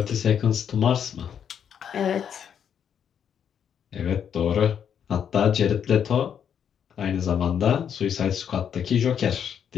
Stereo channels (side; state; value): right; quieter; 8.3 dB